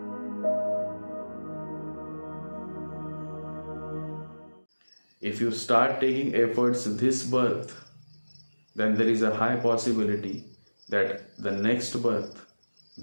If you start taking efforts this birth, then there is a high possibility that the next birth,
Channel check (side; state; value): both; inverted; correlation -1.00